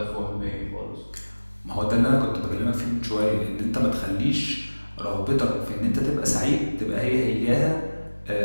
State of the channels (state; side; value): inverted; both; correlation -1.00